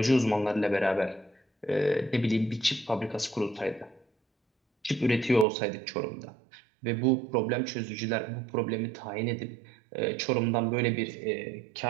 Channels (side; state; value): left; drops out; at 5.5 s